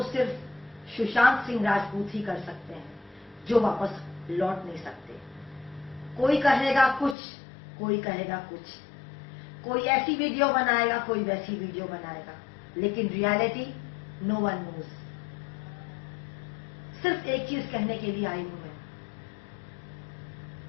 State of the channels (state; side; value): drops out; right; at 7.2 s